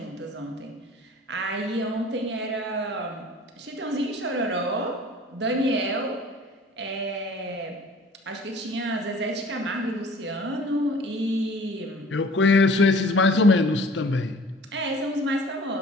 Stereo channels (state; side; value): normal; both; correlation 0.48